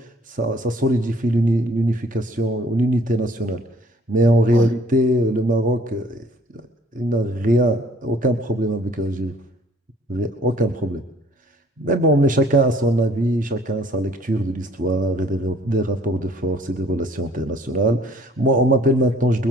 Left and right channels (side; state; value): both; normal; correlation 0.58